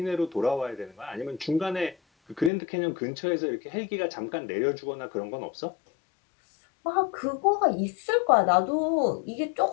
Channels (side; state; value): right; drops out; at 2.5 s